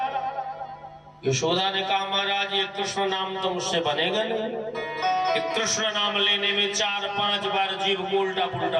यशोदा ने कहा महाराज ये कृष्ण नाम तो मुझसे बनेगा नहीं। कृष्ण नाम लेने में 4-5 बार जीव को उल्टा पुल्टा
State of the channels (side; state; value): both; identical; correlation 1.00